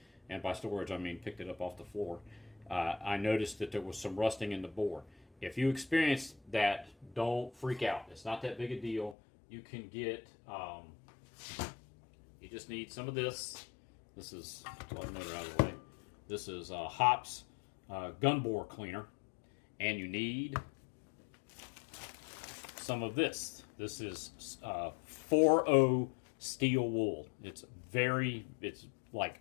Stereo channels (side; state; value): right; drops out; at 9.2 s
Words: and by storage I mean picked it up off the floor, I noticed that there was some rusting in the bore. If you experience that, don't freak out. It's not that big a deal. You can get, you just need some of this. This is, let the motor out of the way. This is Hops gun bore cleaner. And you need some of this. This is 4O steel wool. It's like